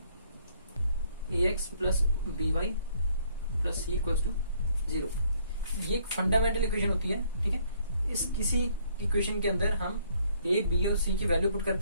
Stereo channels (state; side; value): inverted; both; correlation -0.65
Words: ax plus B Y plus C equals to 0, ये एक फंडामेंटल इक्वेशन होती है, ठीक है। इस किसी इक्वेशन के अंदर हम ए बी और सी की वैल्यू पुट